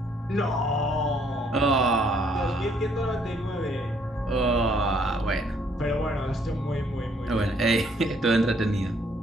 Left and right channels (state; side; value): normal; both; correlation 0.66